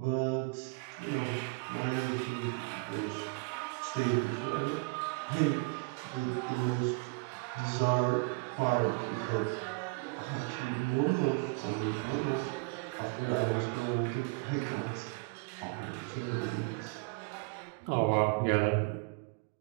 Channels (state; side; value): quieter; left; 30.7 dB